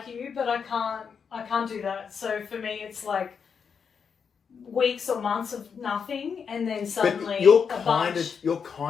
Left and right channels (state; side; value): quieter; right; 6.4 dB